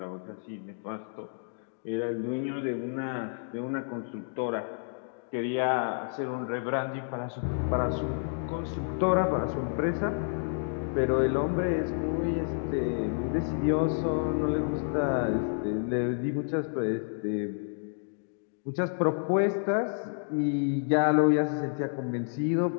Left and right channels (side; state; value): right; silent; digital silence